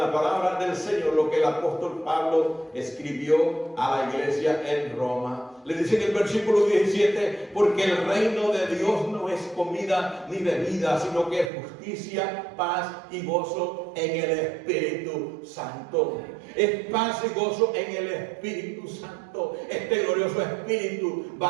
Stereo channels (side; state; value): left; drops out; at 11.5 s